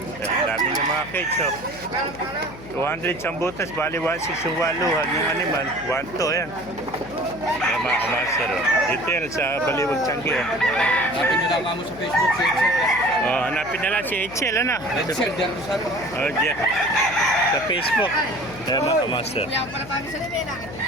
Dami ng mga cage o. 200 isang butas. Bali 1.6 yung waluhan. Yung animal. 1.2. Ayan. Ayan mga kamaster o. Detail sa Baliwag Tangke o. Hanapin nyo lang kamo sa Facebook, si Excel. Hanapin na lang si Echel. Ano? Excel, dyan ko sa Diyan. Sa Facebook. Ayan mga kamaster.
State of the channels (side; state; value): left; noise; hum, 16 dB below the sound